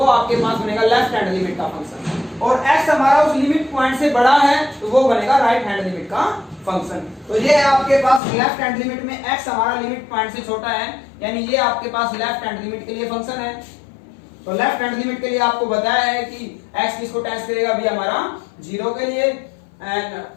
आपके पास बनेगा लेफ्ट हैंड लिमिट का फंक्शन। और x हमारा उस लिमिट पॉइंट से बड़ा है तो वो बनेगा राइट हैंड लिमिट का फंक्शन। तो ये है आपके पास लेफ्ट हैंड लिमिट में x हमारा लिमिट पॉइंट से छोटा है, यानी ये आपके पास लेफ्ट हैंड लिमिट के लिए फंक्शन है। तो लेफ्ट हैंड लिमिट के लिए आपको बताया है कि x किसको टेस्ट करेगा? अभी हमारा 0 के लिए, एंड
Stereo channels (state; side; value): drops out; right; at 8.2 s